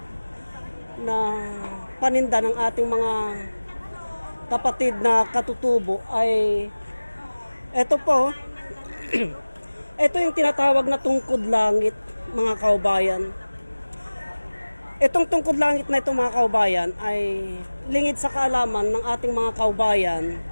na paninda ng ating mga kapatid na katutubo ay ito po. Ito yung tinatawag na tungkod langit, mga kababayan. Itong tungkod langit na ito, mga kababayan, ay lingid sa kaalaman ng ating mga kababayan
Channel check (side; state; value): both; inverted; correlation -1.00